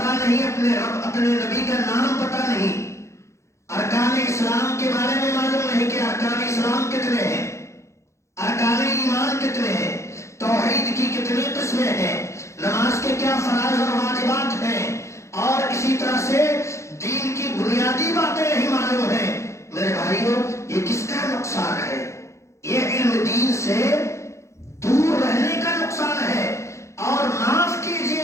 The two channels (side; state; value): right; late; 0.14 ms